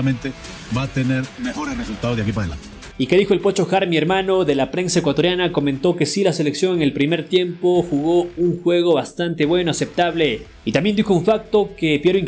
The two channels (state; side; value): identical; both; correlation 1.00